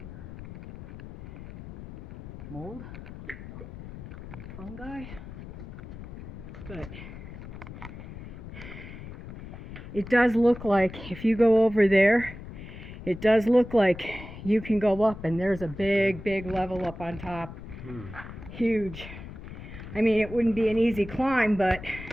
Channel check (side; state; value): left; noise; rumble, 13 dB below the sound